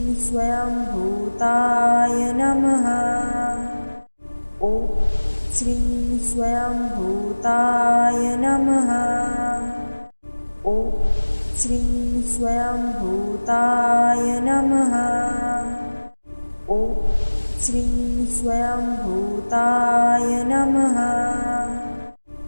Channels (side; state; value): both; inverted; correlation -1.00